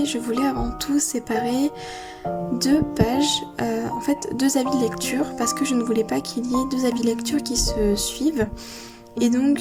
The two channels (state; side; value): identical; both; correlation 1.00